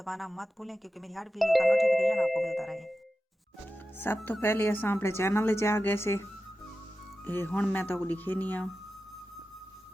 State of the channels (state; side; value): normal; both; correlation 0.93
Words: मत भूलें क्योंकि मेरी हर वीडियो का नोटिफिकेशन आपको मिलता रहे। सब तो पहले असां अपने चैनल च आ गए से हुण मैं तो दिखे नहीं आ।